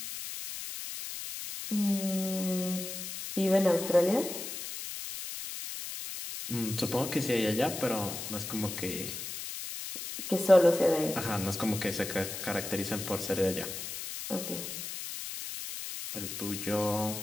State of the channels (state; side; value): noise; left; hiss, 7 dB below the sound